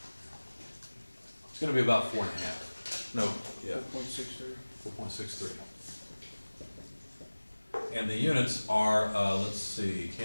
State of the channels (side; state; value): both; inverted; correlation -1.00